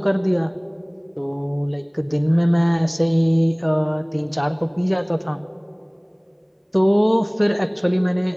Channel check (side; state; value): both; identical; correlation 1.00